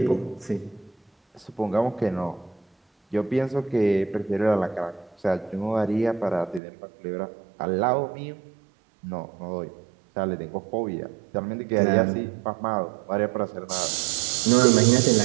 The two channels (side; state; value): left; drops out; at 6.6 s